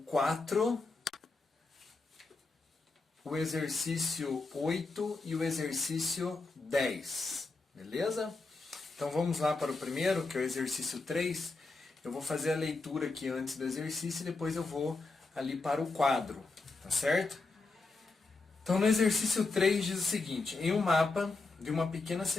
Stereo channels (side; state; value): right; quieter; 3.7 dB